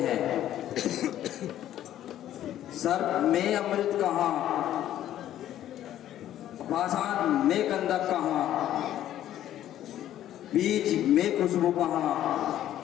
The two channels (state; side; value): quieter; right; 12.1 dB